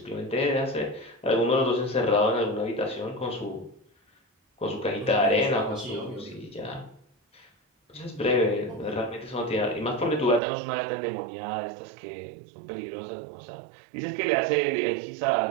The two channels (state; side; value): drops out; left; at 10.4 s